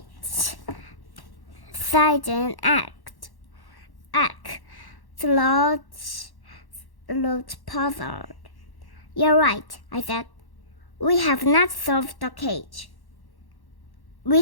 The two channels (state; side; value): late; right; 1.1 ms